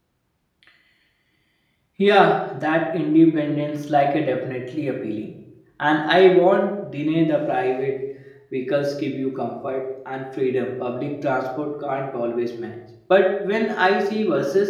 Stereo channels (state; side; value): identical; both; correlation 1.00